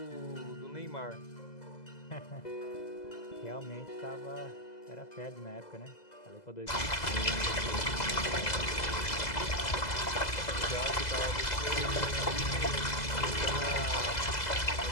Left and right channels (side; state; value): right; late; 2.0 ms